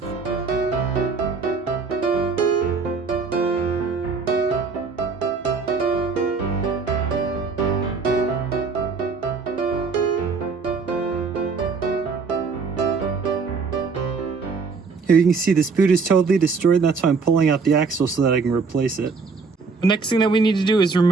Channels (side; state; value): left; quieter; 4.7 dB